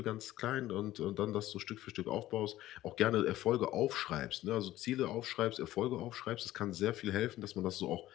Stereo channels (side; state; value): right; quieter; 15.0 dB